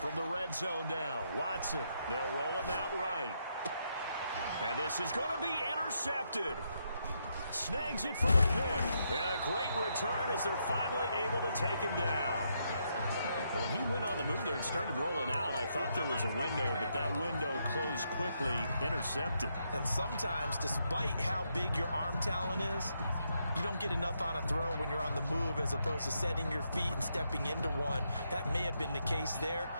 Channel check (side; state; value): both; inverted; correlation -0.79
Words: the red zone now, Watson. They'll roll him out right. And this is going to be intercepted. Snags it for the pick. And a great return as they're finally able to take him down. When he went on the move there and started rolling out, I thought there was a window, but that window closed quickly, intercepted. And sometimes, despite how big your arm talent is, you don't get enough on a throw when you're on the move as opposed to setting your feet and stepping into one. That may have been the case there,